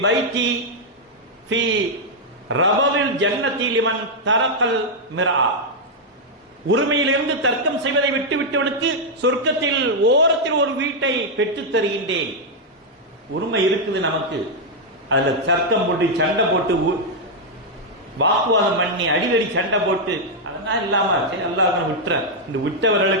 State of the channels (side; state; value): both; normal; correlation -0.02